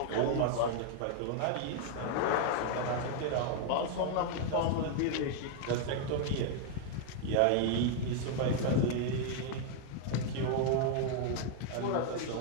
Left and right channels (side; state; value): both; different; correlation 0.00